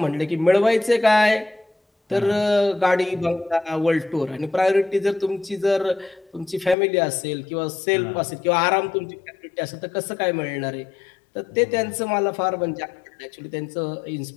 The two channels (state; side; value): drops out; right; at 6.8 s